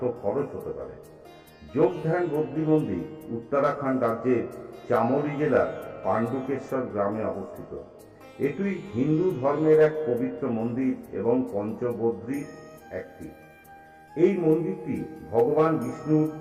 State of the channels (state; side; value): identical; both; correlation 1.00